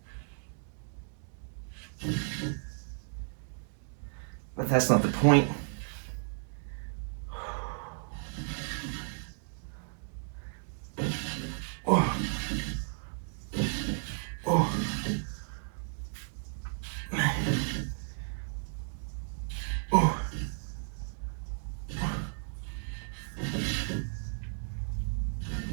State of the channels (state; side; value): silent; left; digital silence